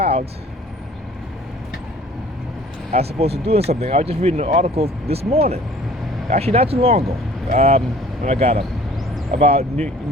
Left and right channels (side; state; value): both; normal; correlation 0.51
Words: as opposed to doing something. I was just reading an article this morning, actually not too long ago, when I got up, about